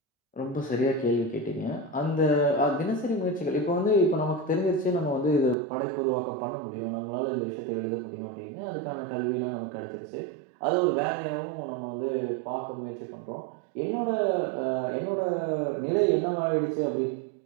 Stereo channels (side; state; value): left; drops out; at 5.6 s